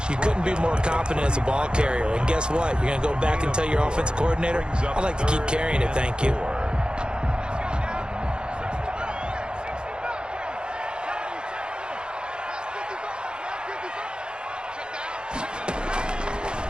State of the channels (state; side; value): late; left; 0.049 ms